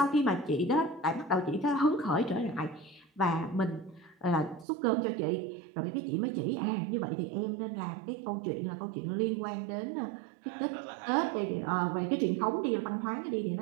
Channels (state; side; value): drops out; left; at 4.7 s